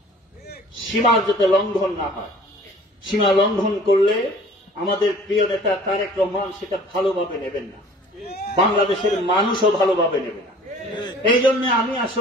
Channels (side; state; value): both; normal; correlation 0.49